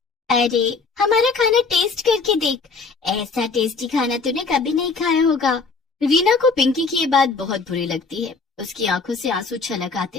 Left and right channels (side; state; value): right; quieter; 4.4 dB